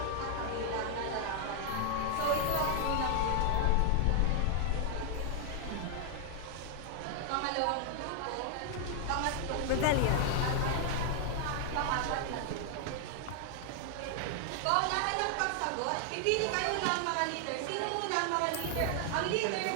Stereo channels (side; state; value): both; different; correlation 0.00